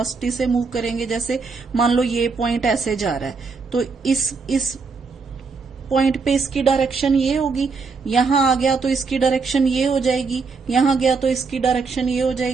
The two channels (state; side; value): quieter; left; 4.7 dB